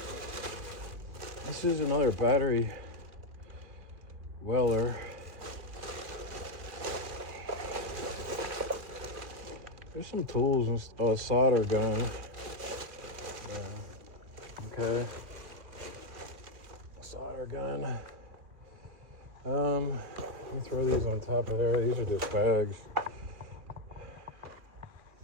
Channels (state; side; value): late; left; 2.4 ms